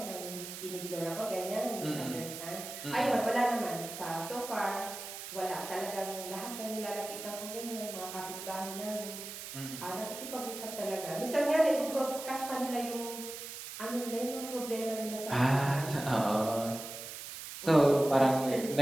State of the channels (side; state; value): right; noise; hiss, 9 dB below the sound